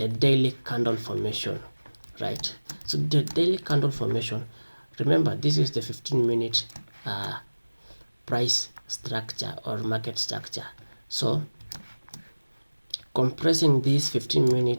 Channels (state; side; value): inverted; both; correlation -1.00